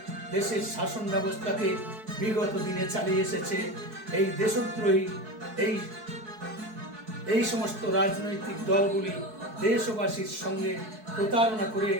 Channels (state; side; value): late; left; 4.6 ms